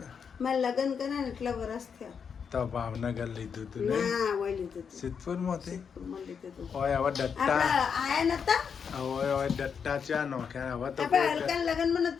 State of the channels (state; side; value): quieter; right; 6.6 dB